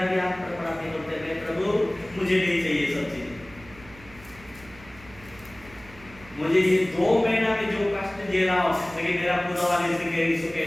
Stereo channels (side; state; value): right; noise; hum, 21 dB below the sound